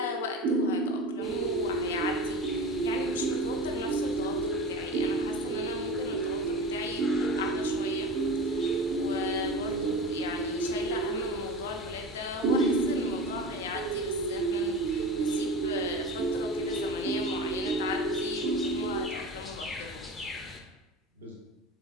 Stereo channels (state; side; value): normal; both; correlation 0.31